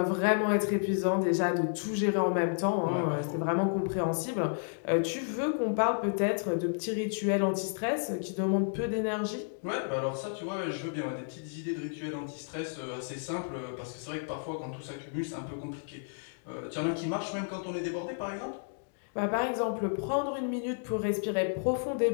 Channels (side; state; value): right; silent; digital silence